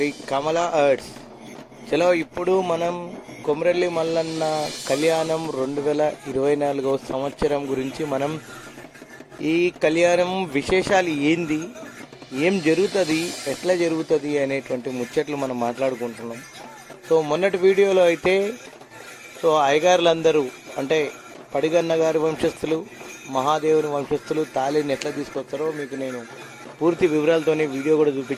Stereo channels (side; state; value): both; identical; correlation 1.00